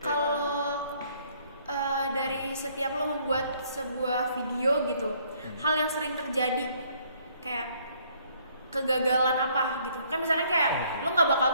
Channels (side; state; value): both; inverted; correlation -0.64